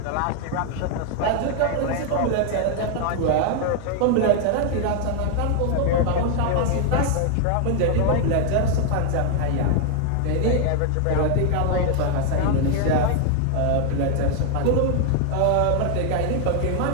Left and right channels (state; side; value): different; both; correlation 0.00